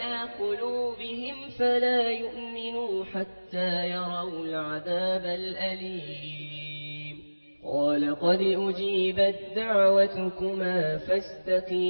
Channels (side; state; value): both; inverted; correlation -1.00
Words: قلوبهم فلا يؤمنوا حتى يروا العذاب الأليم قال قد أجيبت دعوتكما